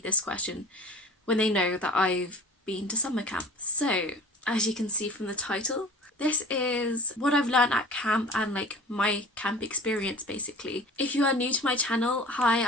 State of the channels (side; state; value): both; normal; correlation 0.40